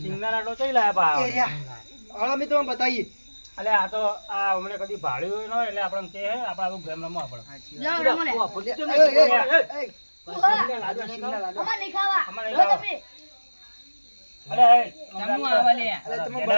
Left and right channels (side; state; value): both; inverted; correlation -1.00